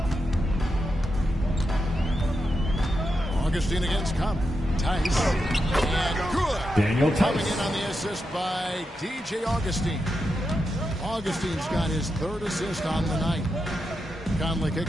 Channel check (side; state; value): both; normal; correlation 0.86